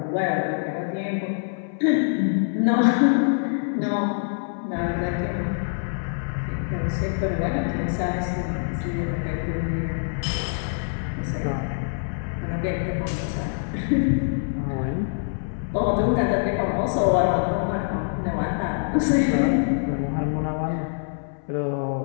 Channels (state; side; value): silent; right; 62 dB below the other